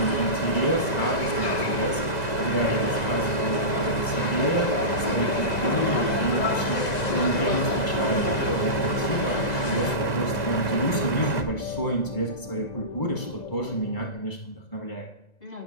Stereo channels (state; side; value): late; right; 2.0 ms